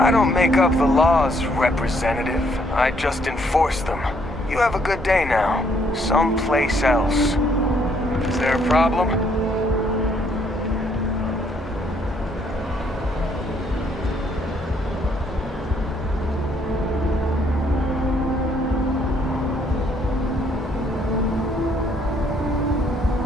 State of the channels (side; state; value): both; normal; correlation 0.68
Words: don't make up the laws, Representative. I just enforce them. You have a good day now. Someplace else. Is there a problem?